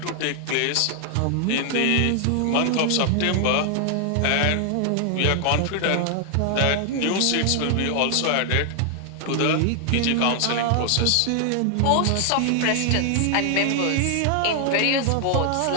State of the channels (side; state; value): both; different; correlation 0.00